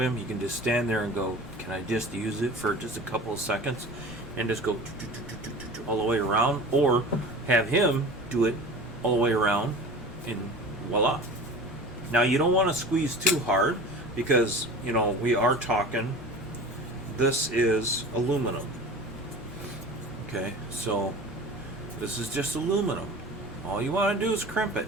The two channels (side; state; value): both; normal; correlation 0.38